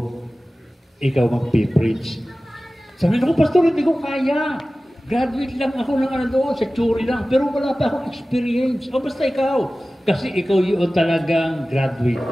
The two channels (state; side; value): normal; both; correlation 0.96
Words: ikaw magpipreach. Sabi niya, pastor, hindi ko kaya. Graduate lang ako ng doon, sa theory lang. Pero wala pa akong experience. O basta ikaw. Kasi ikaw yung talagang graduate